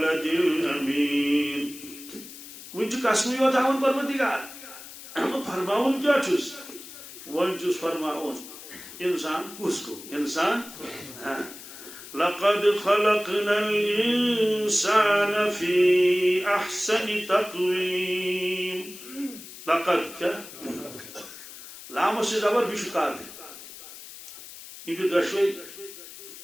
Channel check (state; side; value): noise; left; hiss, 15 dB below the sound